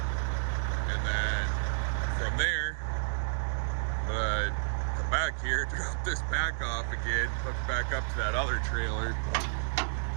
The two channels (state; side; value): silent; left; digital silence